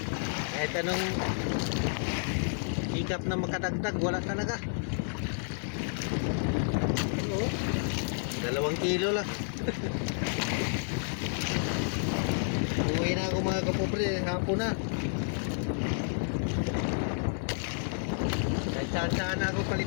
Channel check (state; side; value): silent; right; digital silence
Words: kahit anong hikap na makadagdag, wala talaga. Oo, 2 kilo lang. Uwi na ako mga kapobre, hapon na. Kahit saan na ako